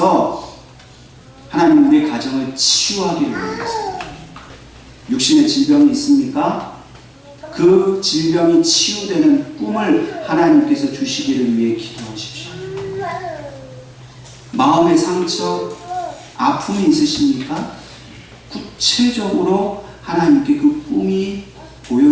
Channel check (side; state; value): both; identical; correlation 1.00